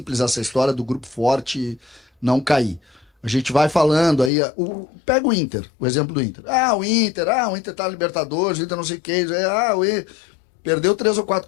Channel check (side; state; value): right; drops out; at 4.3 s